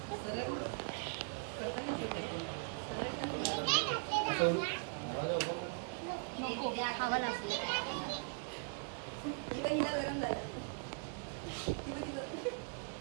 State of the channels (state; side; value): quieter; left; 39.4 dB